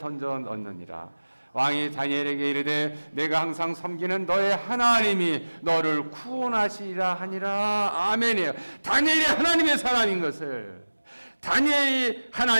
넣느니라. 왕이 다니엘에게 이르되 내가 항상 섬기는 너의 하나님이 너를 구원하시리라 하니라. 아멘이에요. 다니엘이 하나님의 사람인 것을, 다니엘이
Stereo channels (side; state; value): both; inverted; correlation -1.00